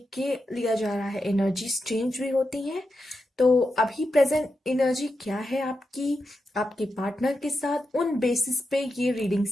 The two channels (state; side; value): normal; both; correlation 0.88